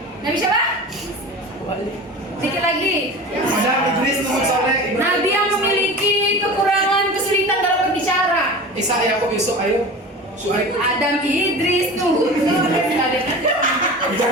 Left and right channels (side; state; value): both; normal; correlation 0.34